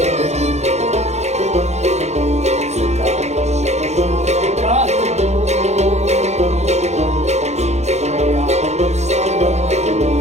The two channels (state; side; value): late; left; 0.32 ms